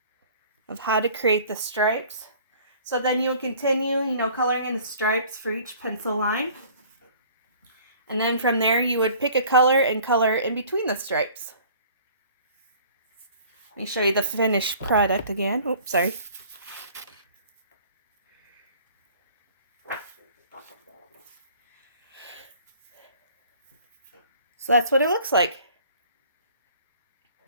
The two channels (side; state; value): both; inverted; correlation -0.51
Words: of how to create the stripes. So then you'll continue, you know, coloring in the stripes for each pencil line. And then from there you would pick a color and color in between the stripes. Let me show you the finished product again. Oops, sorry. So that's what it looks like.